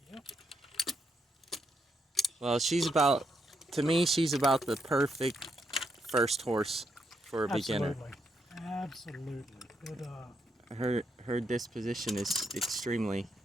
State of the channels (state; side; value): normal; both; correlation 0.79